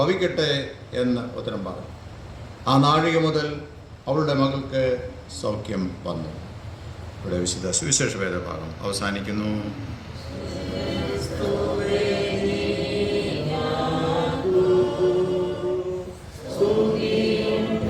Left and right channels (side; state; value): both; identical; correlation 1.00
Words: എന്ന് ഉത്തരം പറഞ്ഞു. ആ നാഴിക മുതൽ അവളുടെ മകൾക്ക് സൗഖ്യം വന്നു. ഇവിടെ വിശുദ്ധ സുവിശേഷ വേദഭാഗം അവസാനിക്കുന്നു.